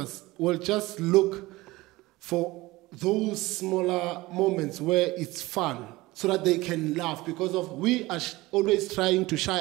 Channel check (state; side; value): quieter; left; 20.0 dB